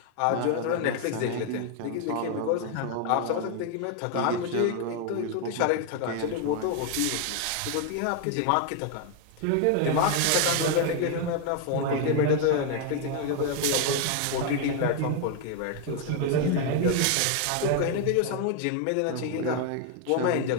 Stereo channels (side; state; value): both; different; correlation 0.00